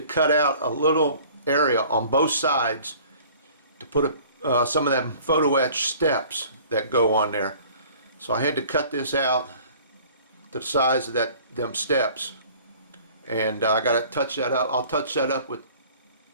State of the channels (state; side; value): inverted; both; correlation -0.49